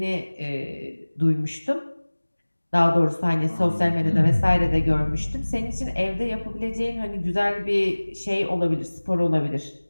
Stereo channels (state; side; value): inverted; both; correlation -1.00